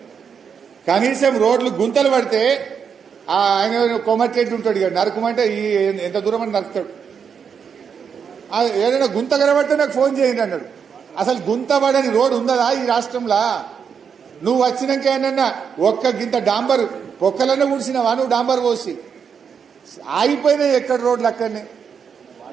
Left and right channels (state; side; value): quieter; left; 6.8 dB